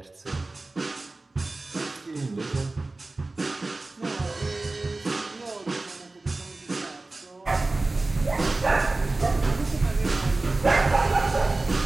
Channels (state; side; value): quieter; left; 3.2 dB